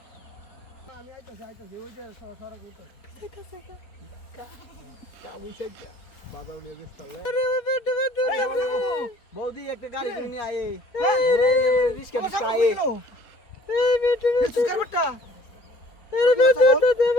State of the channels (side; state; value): right; late; 4.2 ms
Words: আমি আইতাছি ওই যে সরা কইতো বাজার নিয়ে বেচতালে বৌদি একটা গাড়ি কিনে নিয়ে আয়ে রিস্কা রিস্কা আয়ে এই বেটু বেটু করবটা এর বেটু তো